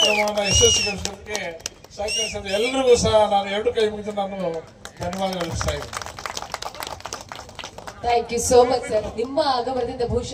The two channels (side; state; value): both; identical; correlation 1.00